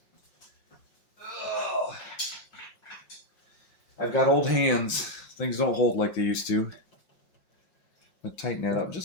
Ugh. I've got old hands. Things don't hold like they used to. I'm going to tighten that up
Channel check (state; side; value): late; right; 5.5 ms